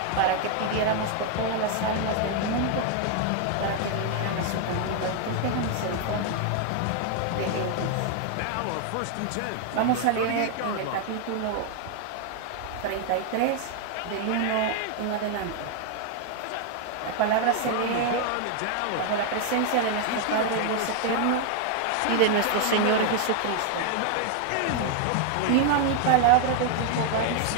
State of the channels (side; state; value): both; different; correlation 0.00